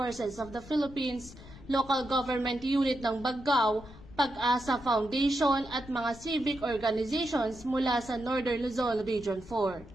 of the Philippines, Local Government Unit ng Baggao, Pag-asa Foundation at mga civic organizations mula sa Northern Luzon Region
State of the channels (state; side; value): noise; left; rumble, 18 dB below the sound